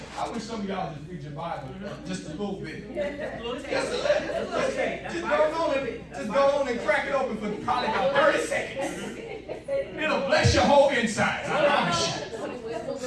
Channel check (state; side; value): identical; both; correlation 1.00